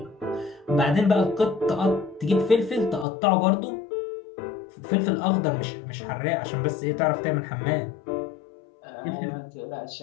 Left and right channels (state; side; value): drops out; right; at 3.1 s